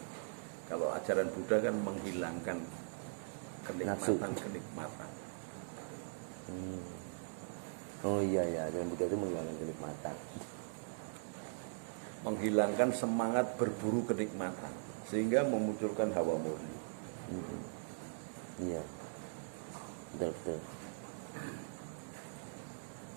Kalau ajaran Buddha kan menghilangkan kenikmatan. Hmm. Oh iya ya, ajaran Buddha itu menghilangkan kenikmatan. Menghilangkan semangat berburu kenikmatan sehingga memunculkan hawa murni. Hmm. Iya, betul.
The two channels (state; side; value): silent; left; digital silence